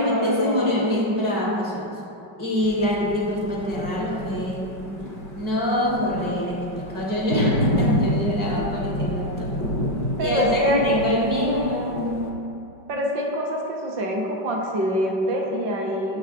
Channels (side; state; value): left; late; 5.2 ms